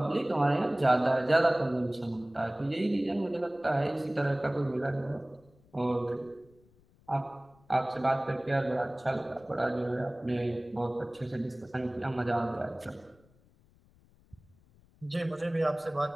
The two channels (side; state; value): left; noise; rumble, 30 dB below the sound